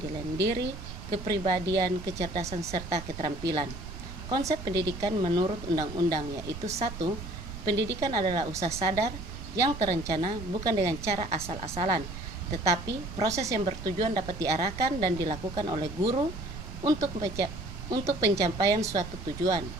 diri, kepribadian, kecerdasan, serta keterampilan. Konsep pendidikan menurut undang-undang yaitu 1. Pendidikan adalah usaha sadar yang terencana bukan dengan cara asal-asalan, tetapi proses yang bertujuan dapat diarahkan dan dilakukan oleh guru untuk pencapaian suatu tujuan.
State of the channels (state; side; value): noise; right; rumble, 10 dB below the sound